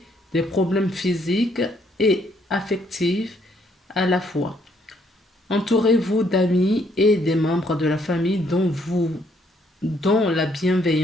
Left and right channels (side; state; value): both; normal; correlation 0.69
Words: des problèmes physiques et affectifs à la fois. Entourez-vous d'amis et des membres de la famille dont la